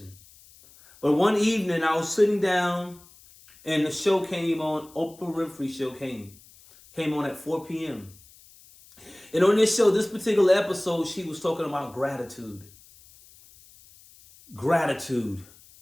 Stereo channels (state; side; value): noise; left; hiss, 25 dB below the sound